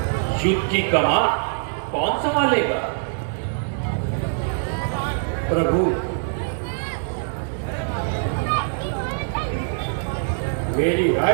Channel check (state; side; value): silent; left; 58 dB below the other